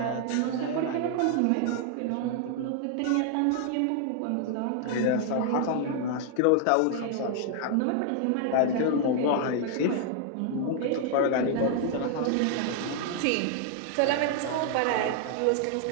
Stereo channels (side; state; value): both; different; correlation 0.00